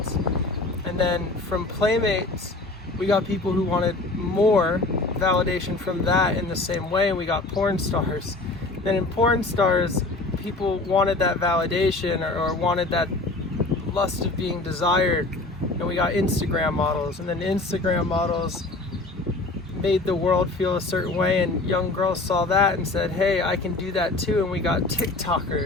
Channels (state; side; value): quieter; right; 3.1 dB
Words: And then from Playmates, we got people who wanted more validation from that in the same way, and we got porn stars. Then in porn stars, people wanted that validation or wanted that lust of being desired, and we got Instagram models. And then Instagram models made the world feel a certain way, and young girls saw that and said, hey, I can do that too, and we got